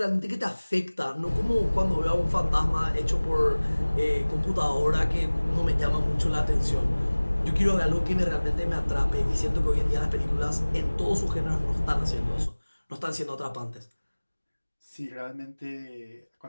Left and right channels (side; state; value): both; inverted; correlation -1.00